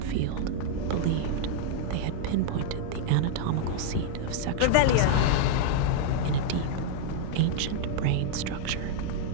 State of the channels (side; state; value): both; different; correlation -0.01